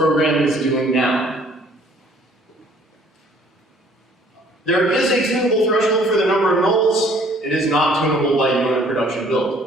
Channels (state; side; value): normal; both; correlation 0.58